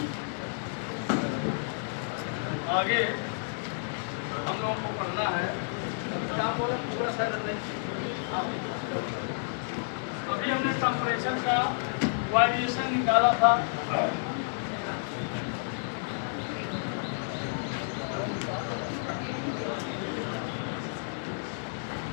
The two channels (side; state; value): right; silent; digital silence